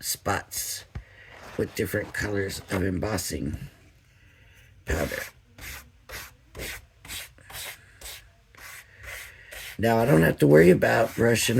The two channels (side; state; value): both; identical; correlation 1.00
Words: spots with different colors of embossing powder. Now I don't have to worry about brushing